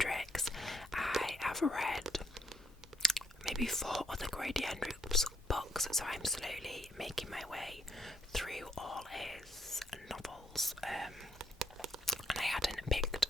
I have read maybe 4 other Grady Hendrix books, so I'm slowly making my way through all his novels, and I hadn't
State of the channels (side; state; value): both; normal; correlation 0.74